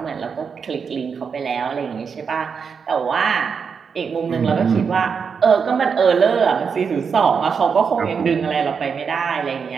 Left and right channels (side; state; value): left; quieter; 6.1 dB